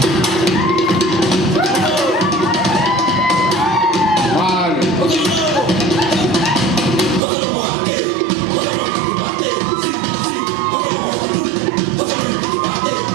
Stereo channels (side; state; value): left; drops out; at 7.2 s